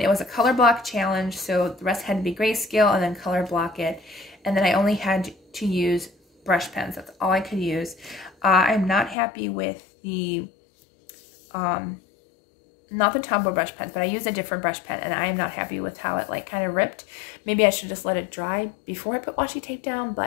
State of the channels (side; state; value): right; drops out; at 9.2 s